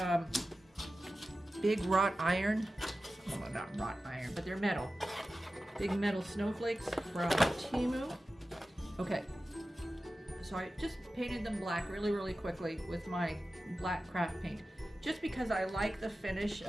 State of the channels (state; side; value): normal; both; correlation 0.94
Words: big wrought iron, well, not wrought iron, but they're metal, big metal snowflakes from Temu. Okay, so I just painted them black really, really quickly with my black craft paint, just because I like the finish